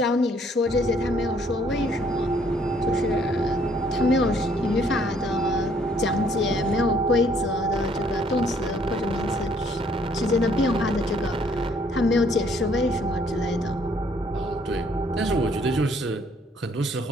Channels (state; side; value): normal; both; correlation 0.64